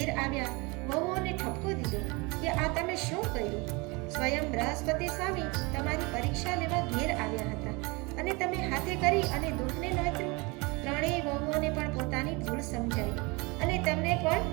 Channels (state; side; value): quieter; left; 26.9 dB